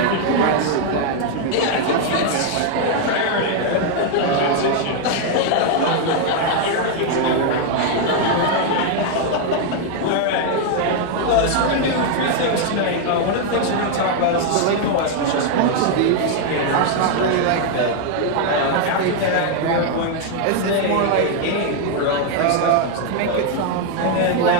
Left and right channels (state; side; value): different; both; correlation 0.00